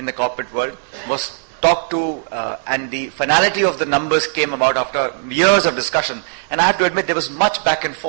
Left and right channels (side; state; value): left; silent; 67 dB below the other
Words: the corporate world was talked to, and the finality of the numbers came about after years of discussion. And I have to admit, there was much back and